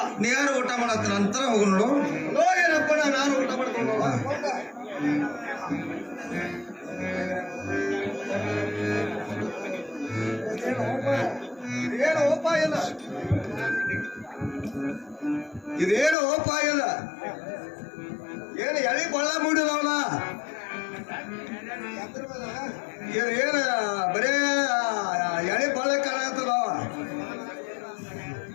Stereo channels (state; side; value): drops out; right; at 16.2 s